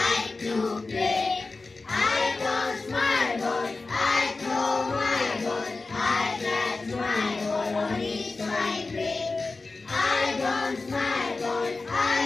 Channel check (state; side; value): quieter; right; 3.7 dB